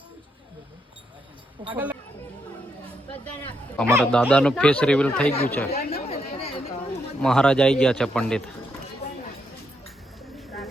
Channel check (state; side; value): normal; both; correlation 0.79